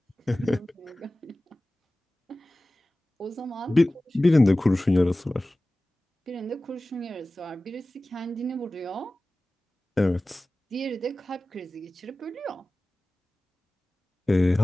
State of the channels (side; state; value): both; normal; correlation 0.97